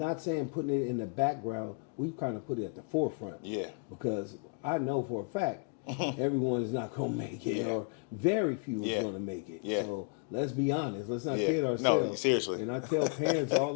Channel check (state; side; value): quieter; right; 35.7 dB